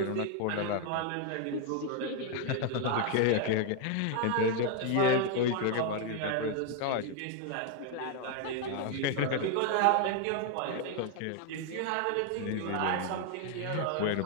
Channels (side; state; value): both; different; correlation 0.01